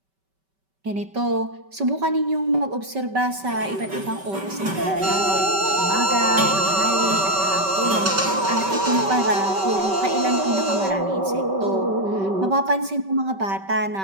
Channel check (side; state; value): left; late; 5.2 ms